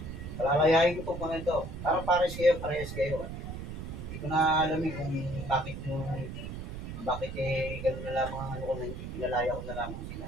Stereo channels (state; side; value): noise; right; rumble, 8 dB below the sound